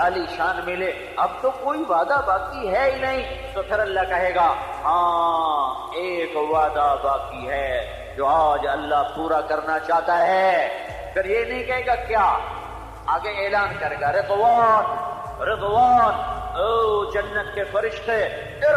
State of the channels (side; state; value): both; identical; correlation 1.00